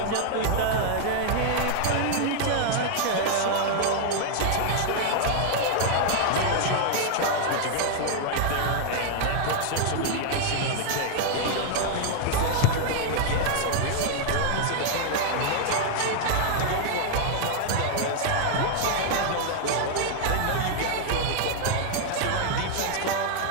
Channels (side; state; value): both; different; correlation 0.00